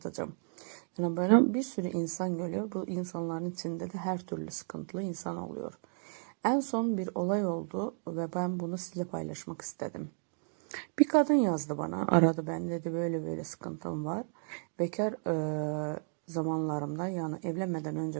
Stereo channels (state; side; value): silent; left; 56 dB below the other